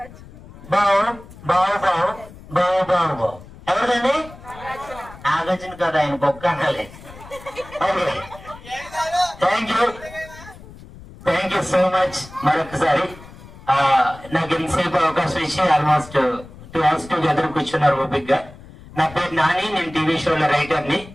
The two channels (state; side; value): noise; left; rumble, 18 dB below the sound